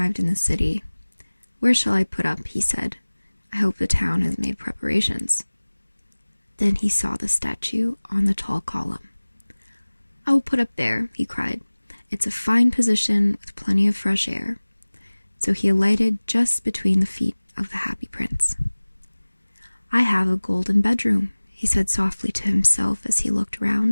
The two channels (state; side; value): inverted; both; correlation -1.00